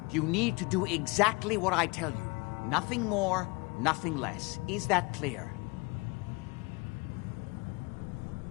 you need to do exactly what I tell you. Nothing more, nothing less. Is that clear?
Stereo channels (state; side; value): quieter; right; 26.9 dB